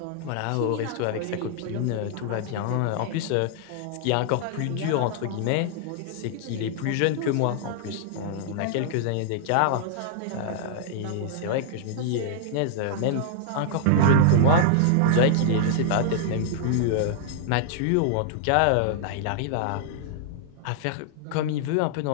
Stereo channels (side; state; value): both; different; correlation -0.01